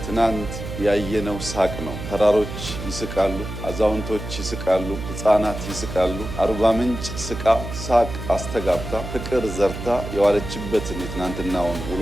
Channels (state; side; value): noise; right; hum, 8 dB below the sound